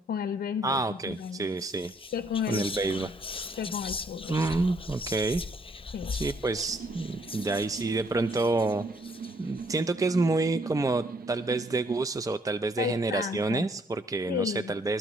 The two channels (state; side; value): normal; both; correlation 0.67